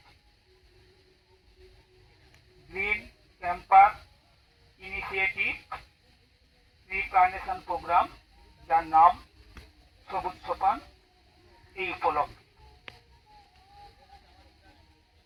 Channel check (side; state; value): both; identical; correlation 1.00